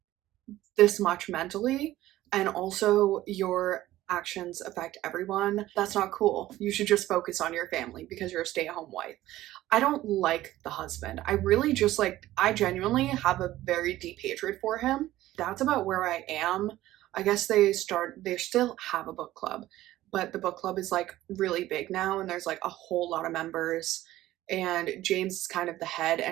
this much mentally, and also your actions affect everyone. That's not cool. You should just focus on your family because you're a stay-at-home wife. I don't like the husband. I really just like, I genuinely have a very deep hatred for him. That's about where I am. I guess they still have a book club, but the book club is like really big now and there's like a whole lot of members, and James is kind of the head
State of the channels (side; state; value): left; quieter; 15.3 dB